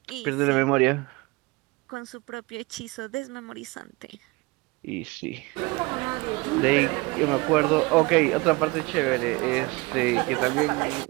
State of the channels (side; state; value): left; quieter; 24.8 dB